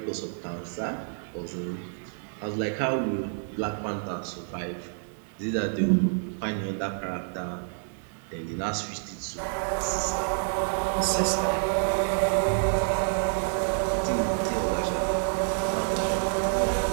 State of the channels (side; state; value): left; silent; 59 dB below the other